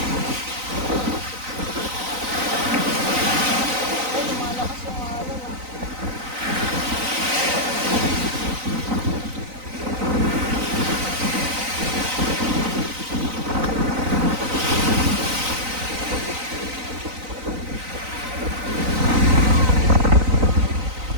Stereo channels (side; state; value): left; late; 3.9 ms